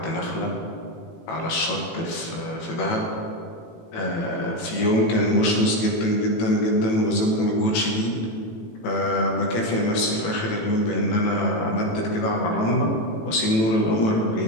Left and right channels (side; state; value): right; late; 18 ms